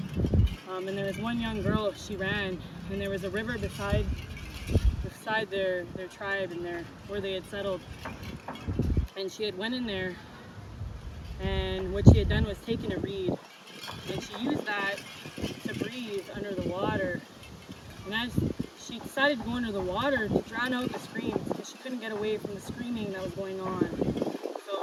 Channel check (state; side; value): identical; both; correlation 1.00